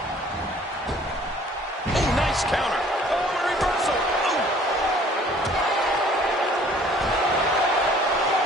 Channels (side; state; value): both; normal; correlation 0.55